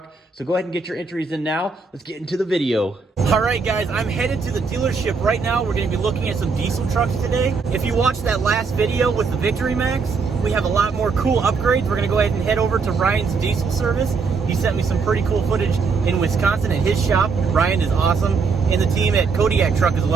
So go ahead and get your entries in now. Let's get into the video. All right, guys, I'm headed to the dealership right now. We're going to be looking at some diesel trucks today. If you watched that last video with the Victory Max, we have a lot more cool upgrades. We're going to go ahead and head over to Ryan's diesel service. He sent me some pretty cool footage in Wisconsin at his shop. Ryan is awesome. And the team at Kodiak Truck as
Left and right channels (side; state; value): left; quieter; 4.9 dB